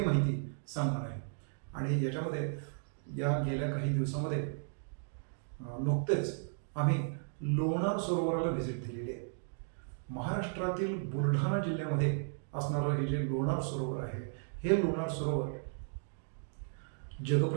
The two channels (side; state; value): left; silent; digital silence